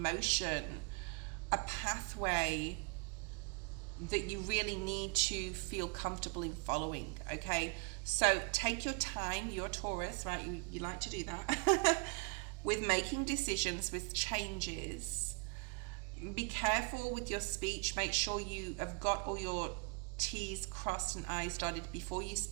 motion a pathway that you really need to feel comfortable in following, okay? So take your time, you're Taurus, right? You like to do that. With making decisions, with changes. Be careful with your speech. Make sure you have got all your T's crossed and I's dotted before you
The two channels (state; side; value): quieter; left; 31.8 dB